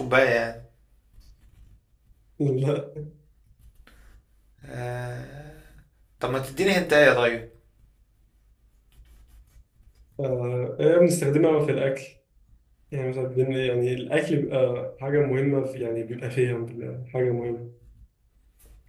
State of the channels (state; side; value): identical; both; correlation 1.00